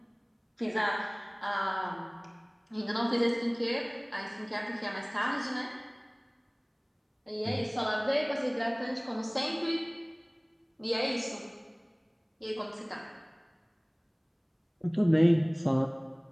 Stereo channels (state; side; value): identical; both; correlation 1.00